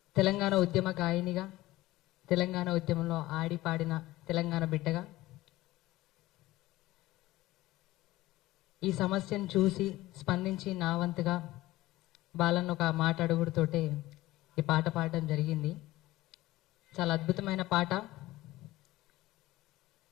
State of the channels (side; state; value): right; quieter; 17.2 dB